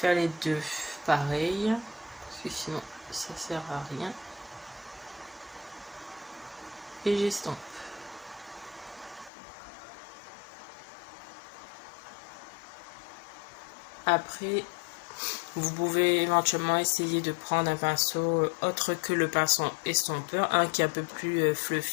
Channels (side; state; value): right; drops out; at 9.3 s